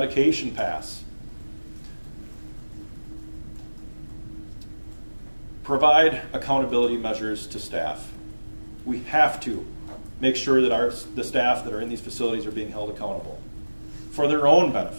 pass. Provide accountability measures to staff. we have to make sure that the staff that are in these facilities are being held accountable for their own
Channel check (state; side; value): inverted; both; correlation -1.00